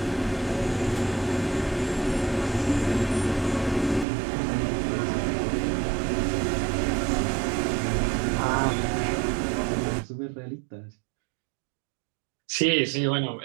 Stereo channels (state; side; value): drops out; left; at 4.0 s